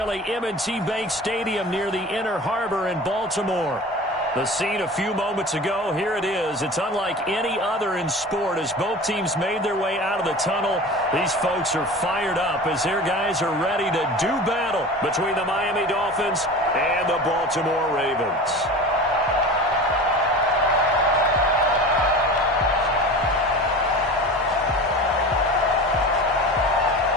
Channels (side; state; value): both; normal; correlation 0.35